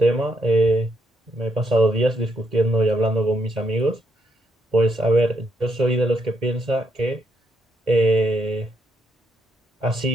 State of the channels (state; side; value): normal; both; correlation 0.77